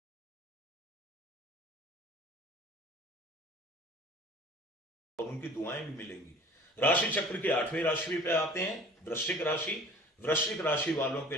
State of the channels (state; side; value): normal; both; correlation 0.46